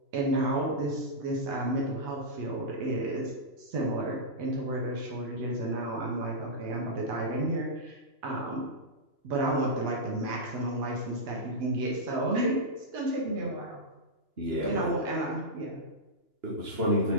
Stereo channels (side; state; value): left; late; 2.9 ms